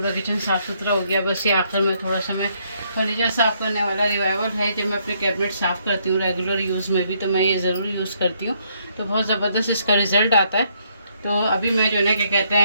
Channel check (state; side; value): inverted; both; correlation -0.71